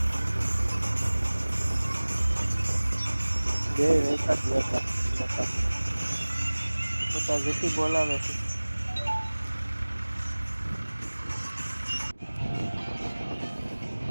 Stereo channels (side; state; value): both; inverted; correlation -1.00